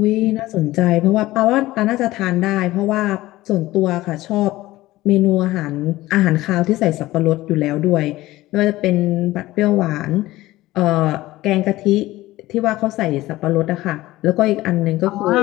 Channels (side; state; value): right; quieter; 17.3 dB